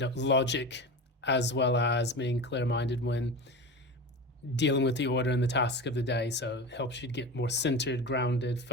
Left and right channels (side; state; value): both; normal; correlation 0.28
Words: logic, as well as being clear-minded when dealing with the order and the task of the day. So it helps you get more centered, grounded,